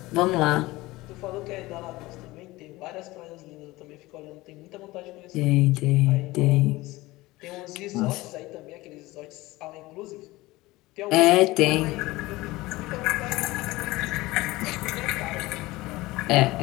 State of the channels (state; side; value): quieter; right; 19.8 dB